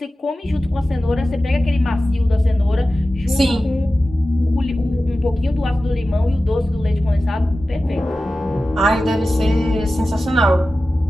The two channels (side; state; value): both; normal; correlation 0.95